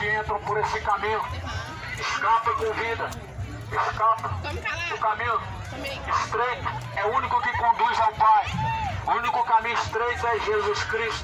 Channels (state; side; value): identical; both; correlation 1.00